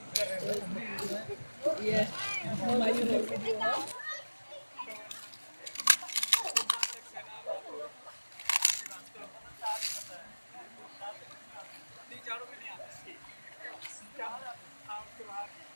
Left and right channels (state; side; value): inverted; both; correlation -1.00